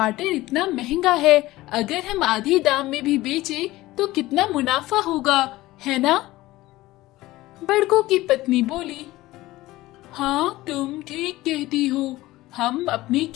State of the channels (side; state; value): right; quieter; 17.8 dB